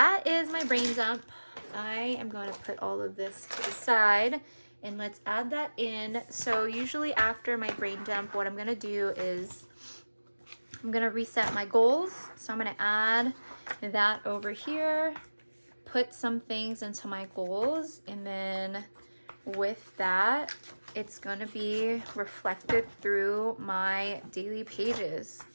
is my brain dump. I am going to put all of this to the side and let's add that in. So usually after my brain dump, what I'm going to do is I'm going to reset my goals. So I'm going to add that over here, put some things into my goals, and then with that, it's going to be reflected through my daily pages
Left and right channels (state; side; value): inverted; both; correlation -1.00